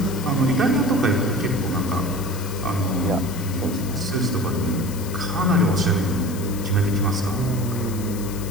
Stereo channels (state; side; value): noise; left; hiss, 14 dB below the sound